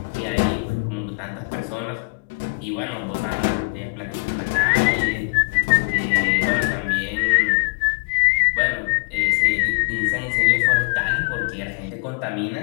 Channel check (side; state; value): right; quieter; 35.7 dB